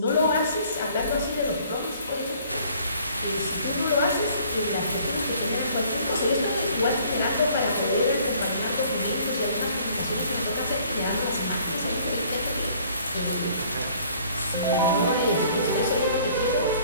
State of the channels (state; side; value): inverted; both; correlation -0.57